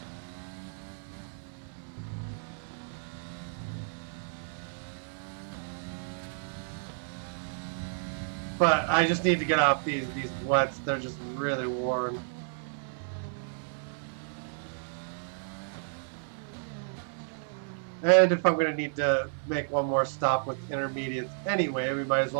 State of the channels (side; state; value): left; silent; 57 dB below the other